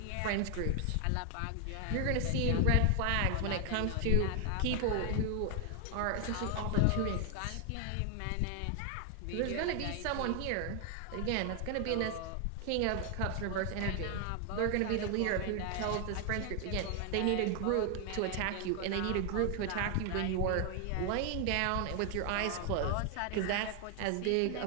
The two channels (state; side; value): different; both; correlation 0.00